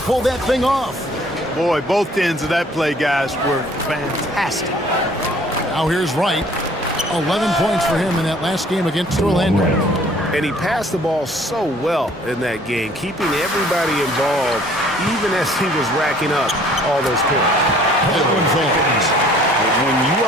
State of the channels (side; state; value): both; normal; correlation 0.56